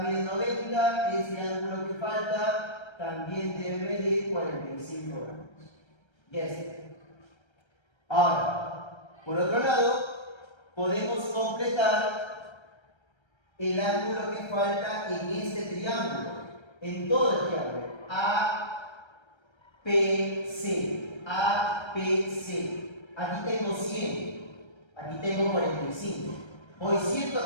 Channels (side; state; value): right; late; 1.3 ms